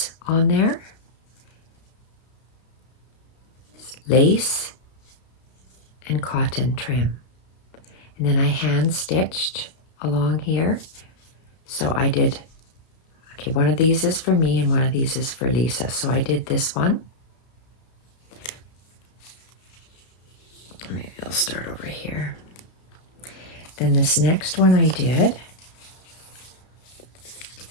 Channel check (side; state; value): right; late; 32 ms